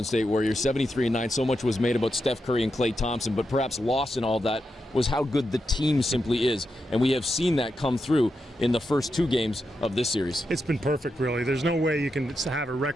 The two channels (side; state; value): both; normal; correlation 0.86